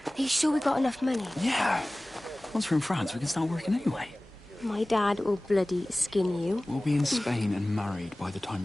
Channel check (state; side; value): normal; both; correlation 0.98